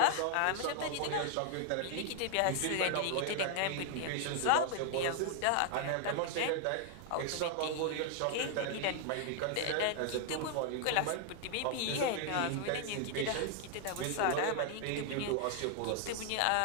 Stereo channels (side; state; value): both; different; correlation 0.00